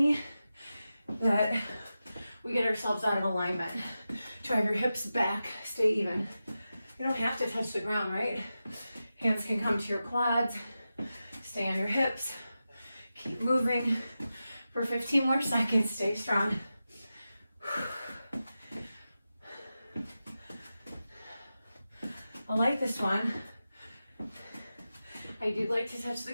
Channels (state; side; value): inverted; both; correlation -0.92